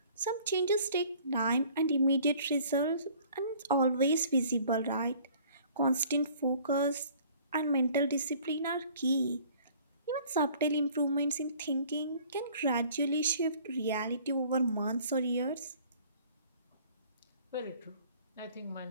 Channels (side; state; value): both; inverted; correlation -0.53